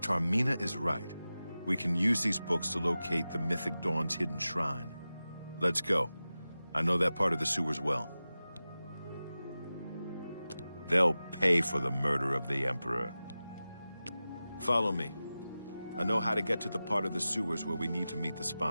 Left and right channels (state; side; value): inverted; both; correlation -0.95